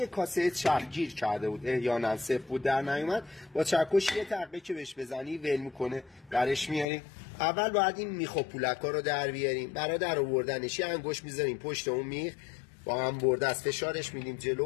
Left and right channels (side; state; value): right; drops out; at 6.9 s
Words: کاسه چرخ گیر کرده بود احیانا صفر بود در نیومد، با چکش یه تقه که بهش بزنی ول میکنه برش میاریم. اول باید این میخ و پولکا رو در بیاریم. برای در آوردنش یه انگشت میذاریم پشت اون میخ، با هم برده از فشارش میدیم جلو